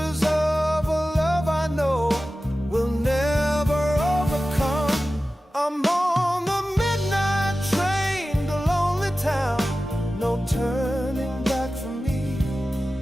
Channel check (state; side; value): normal; both; correlation 0.95